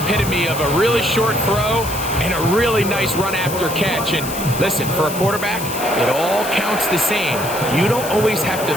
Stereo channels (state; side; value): noise; left; hiss, 9 dB below the sound